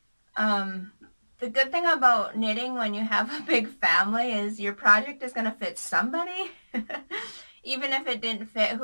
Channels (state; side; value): inverted; both; correlation -1.00